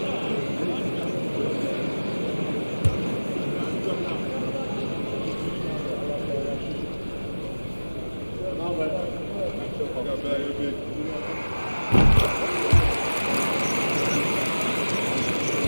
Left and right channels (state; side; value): inverted; both; correlation -1.00